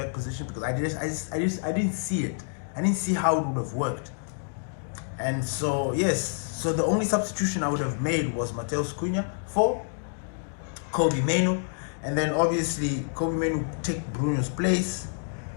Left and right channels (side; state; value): right; silent; digital silence